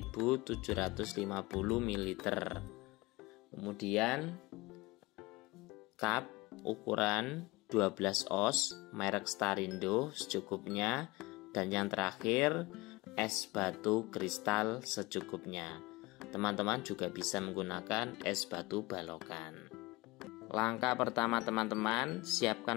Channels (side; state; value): right; quieter; 22.1 dB